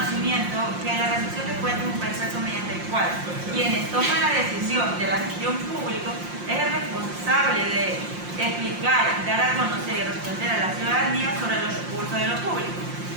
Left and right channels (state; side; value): late; left; 5.7 ms